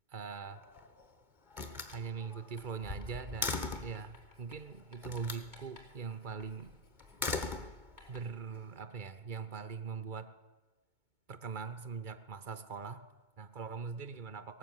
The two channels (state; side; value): late; left; 2.2 ms